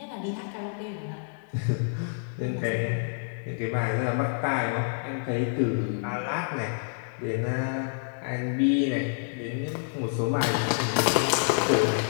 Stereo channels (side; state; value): right; silent; digital silence